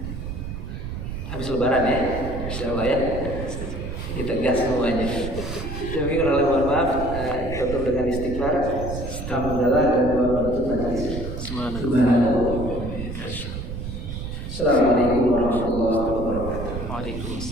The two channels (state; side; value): noise; right; rumble, 6 dB below the sound